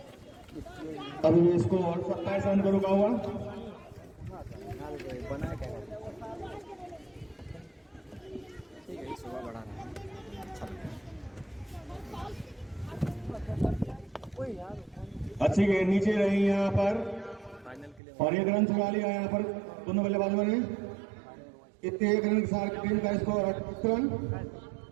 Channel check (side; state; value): left; drops out; at 18.0 s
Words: अभी भी स्कोर 27 रन पर रुका हुआ। बना क्या ठीक है, सुबह बढ़ा रहा है। अच्छी गेंद नीचे रही यहाँ पर और 1 रन चुरा लिया यहाँ पर दोनों बल्लेबाजों ने। इतने 1 रन के साथ टीम का स्कोर 28 रन,